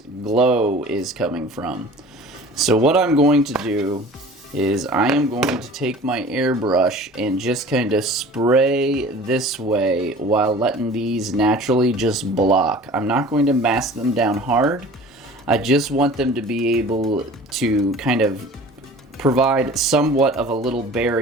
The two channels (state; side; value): normal; both; correlation 0.43